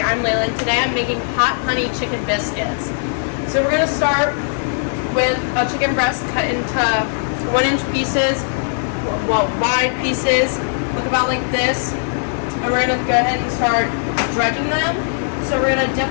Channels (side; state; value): right; silent; 56 dB below the other